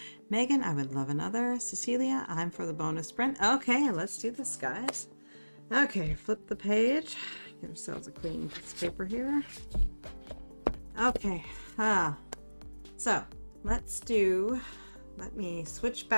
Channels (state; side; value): inverted; both; correlation -1.00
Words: Megan, I would love another. Cecilia, I'm for the bonus sprint. Okay, let's do this, guys. Okay, flip the page. Give ourselves a clean piece of paper here. Okay, so let me switch